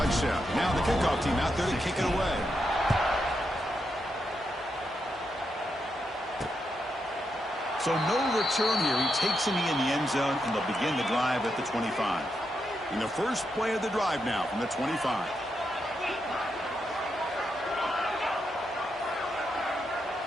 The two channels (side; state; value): both; normal; correlation 0.83